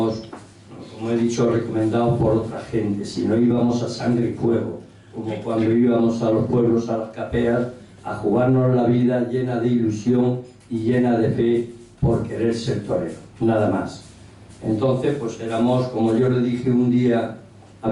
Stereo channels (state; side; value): identical; both; correlation 1.00